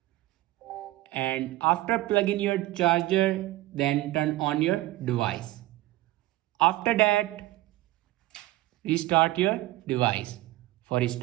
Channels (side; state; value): left; quieter; 17.4 dB